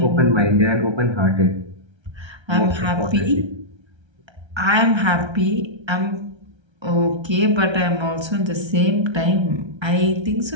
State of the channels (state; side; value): late; left; 1.3 ms